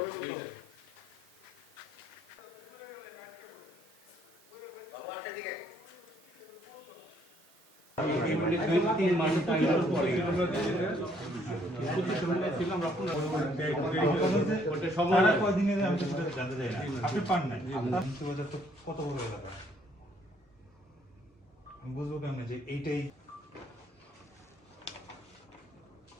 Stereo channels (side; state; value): both; normal; correlation 0.66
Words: আপনি পান নাই কত বড় এলাকা বুঝবো কেমন যে এইটাই